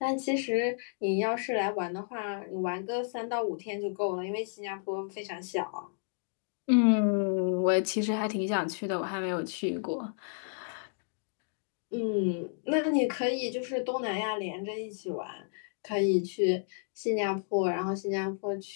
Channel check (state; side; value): silent; right; digital silence